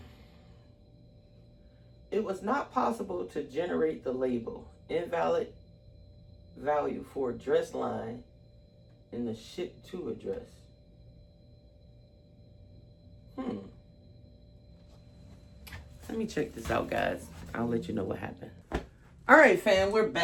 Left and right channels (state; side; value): identical; both; correlation 1.00